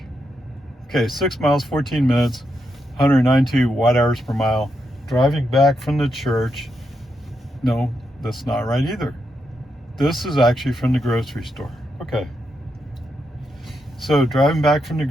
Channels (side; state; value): both; normal; correlation 0.83